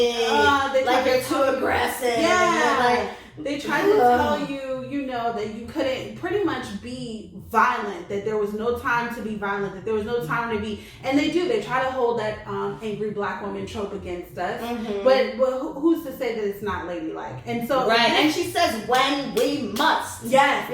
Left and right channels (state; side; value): identical; both; correlation 1.00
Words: Like you're too aggressive. Yeah. They tried to tell you, that you couldn't pretty much be violent, that there was no time to be violent, that there was no time to be, and they try to hold that angry black woman trope against us. But who's to say that it's not ladylike? And so and she says when we must. Yes,